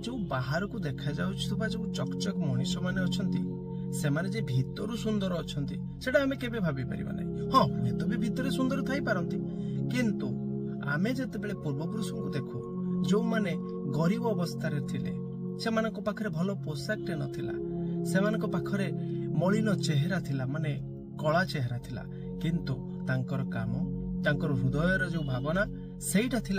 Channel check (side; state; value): both; identical; correlation 1.00